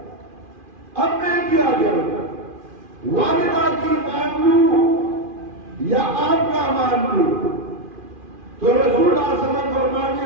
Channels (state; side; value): late; left; 2.4 ms